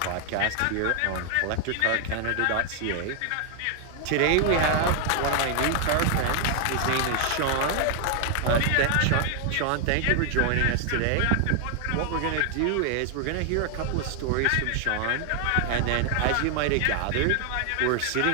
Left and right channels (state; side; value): different; both; correlation 0.00